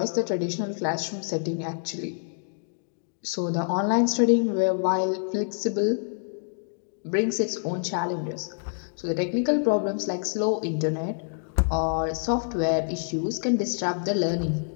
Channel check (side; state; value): right; silent; digital silence